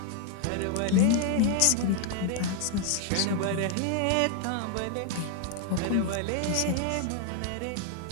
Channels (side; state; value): both; different; correlation 0.00